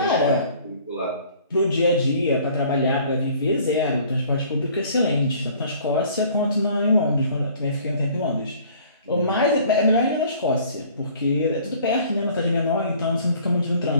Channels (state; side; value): inverted; both; correlation -0.53